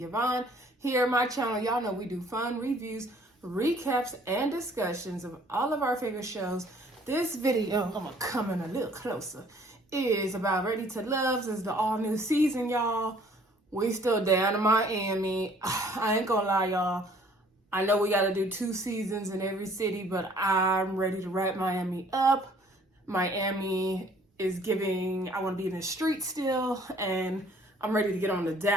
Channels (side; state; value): both; normal; correlation 0.57